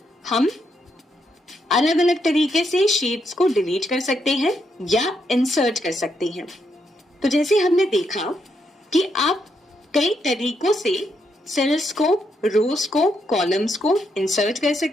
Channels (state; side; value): normal; both; correlation 0.78